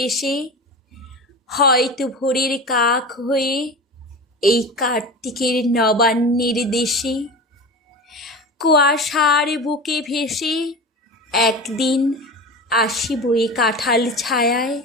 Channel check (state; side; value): normal; both; correlation 0.30